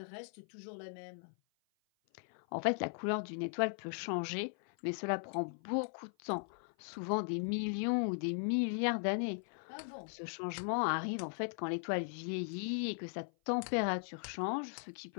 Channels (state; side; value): silent; right; 52 dB below the other